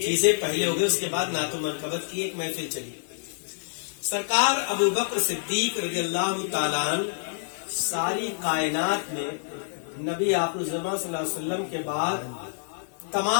پہلے ہو گئی، اس کے بعد نعت و منقبت کی ایک محفل چلی۔ سرکار ابوبکر صدیق رضی اللہ تعالیٰ عنہ ساری کائنات میں نبی آخر الزمان صلی اللہ علیہ وسلم کے بعد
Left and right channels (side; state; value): right; silent; digital silence